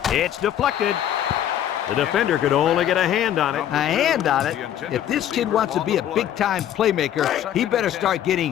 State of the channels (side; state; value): right; quieter; 10.9 dB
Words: It's deflected. The defender could only get a hand on it. A hand on it? If this kid wants to be a big-time playmaker, he better start